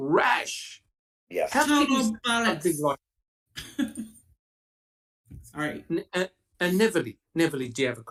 Yes. How can you say Total something bollocks. like Sorry. and Neverly, do you have a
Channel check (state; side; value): identical; both; correlation 1.00